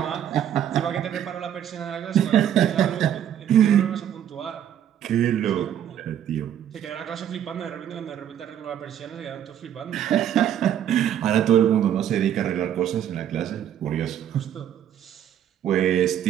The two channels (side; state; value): left; quieter; 10.1 dB